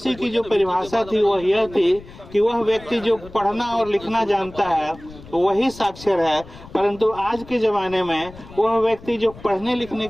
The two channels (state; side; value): noise; left; rumble, 18 dB below the sound